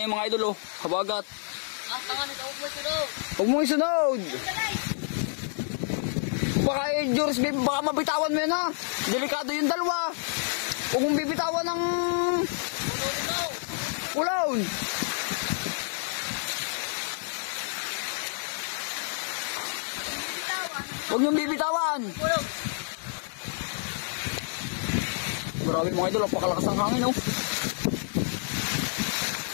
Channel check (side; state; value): right; silent; 59 dB below the other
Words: mga idol oh. Habagat. Ang tanga nito, huwag mo sunod. Huwag mo isunod. Baka George, baka mabitawan mo yan ha. Delikado yung dalawa. Huwag mong bibitawan ng ulawon. Huwag niyong bibitawan. Grabe mga idol, napakalakas ng hangin oh.